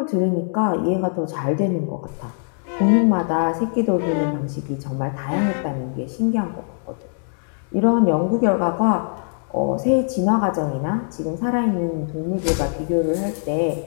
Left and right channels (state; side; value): silent; right; digital silence